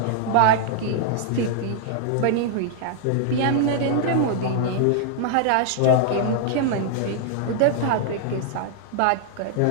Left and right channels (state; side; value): different; both; correlation -0.01